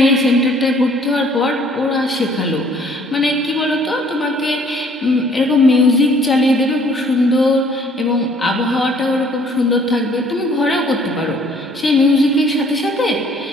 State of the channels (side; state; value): both; normal; correlation 0.59